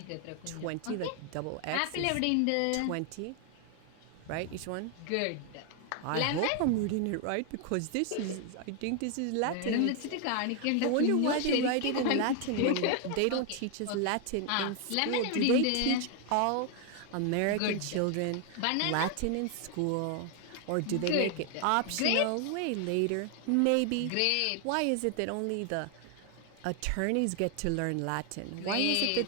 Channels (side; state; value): both; different; correlation 0.00